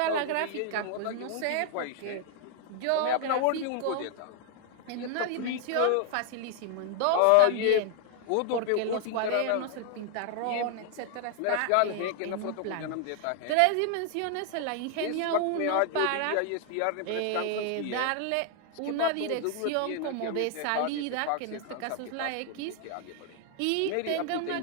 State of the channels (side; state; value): both; different; correlation 0.00